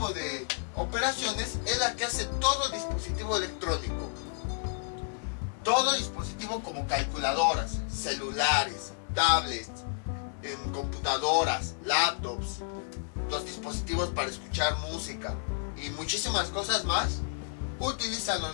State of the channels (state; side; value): silent; right; 57 dB below the other